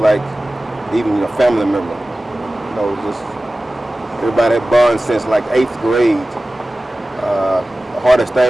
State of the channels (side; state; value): both; normal; correlation 0.96